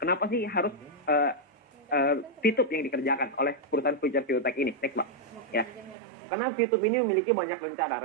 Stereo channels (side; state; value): left; drops out; at 6.0 s